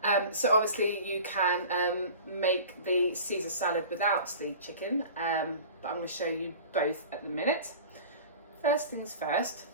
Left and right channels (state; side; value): inverted; both; correlation -0.39